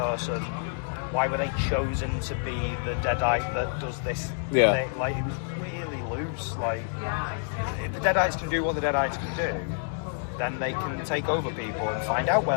Why were they chosen to be the Deadite that does this thing? Like, it was really loose. Like, if the Deadites can do what the Deadites can do, then they can take over people and find out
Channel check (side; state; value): right; silent; 59 dB below the other